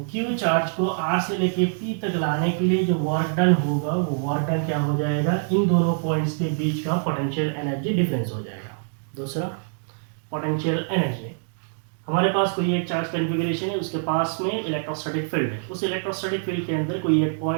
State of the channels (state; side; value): silent; left; digital silence